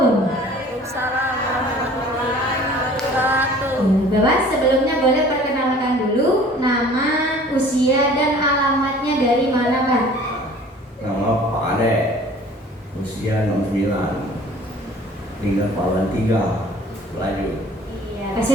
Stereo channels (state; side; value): normal; both; correlation 0.49